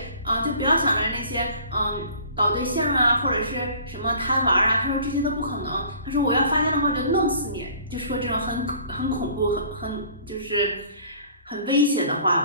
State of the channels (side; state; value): both; inverted; correlation -0.50